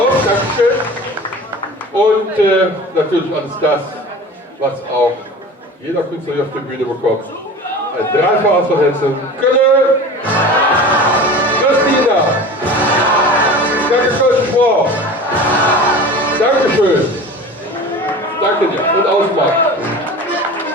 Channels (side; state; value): both; normal; correlation 0.36